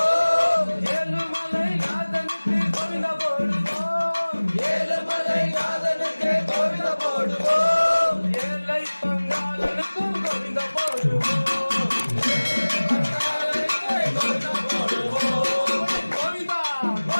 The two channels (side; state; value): both; inverted; correlation -1.00